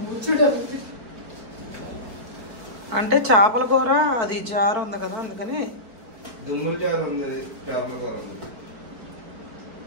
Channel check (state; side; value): late; left; 4.5 ms